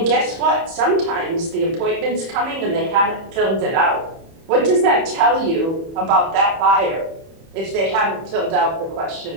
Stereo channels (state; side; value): late; left; 31 ms